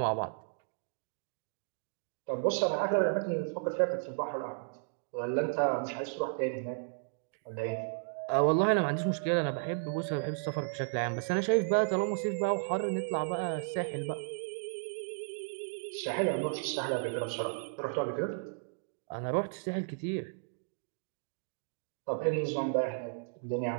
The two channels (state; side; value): silent; left; digital silence